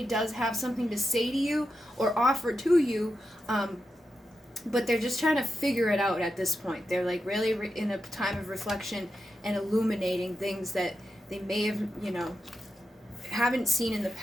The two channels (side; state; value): both; normal; correlation 0.88